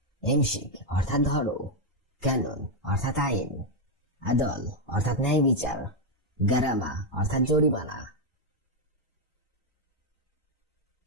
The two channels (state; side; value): normal; both; correlation 0.01